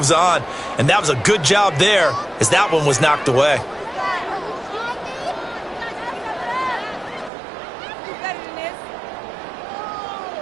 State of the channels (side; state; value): left; drops out; at 7.3 s